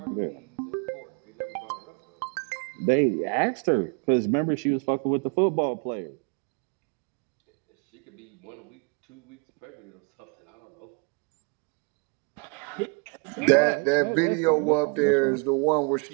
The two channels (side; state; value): left; quieter; 34.5 dB